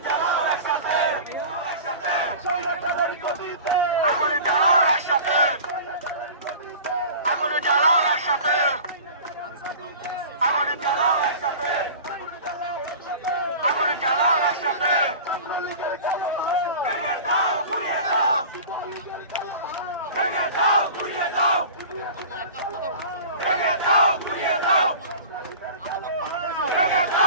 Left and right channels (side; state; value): both; inverted; correlation -0.38